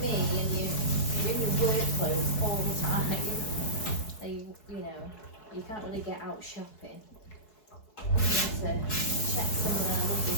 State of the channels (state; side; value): late; right; 4.7 ms